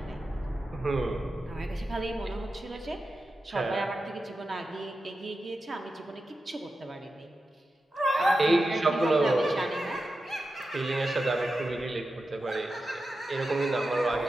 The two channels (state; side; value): normal; both; correlation 0.91